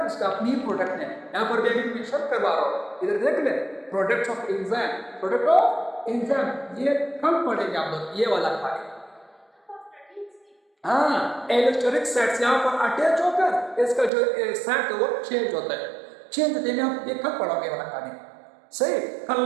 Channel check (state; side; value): drops out; left; at 14.1 s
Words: इसका अपनी प्रोडक्ट ने। यहाँ पर भी मेंशन करवा रहा हूँ, इधर देख ले, products of enzyme, product of enzyme, ये कम पढ़ेंगे आप लोग, ये वाला खाली। हाँ, एलोस्टेरिक साइट से यहाँ पर अटैच होकर इसका जो साइट है वो चेंज होता है, चेंज होते हैं, आप ये कब पढ़ोगे वाला खाली। सही, कल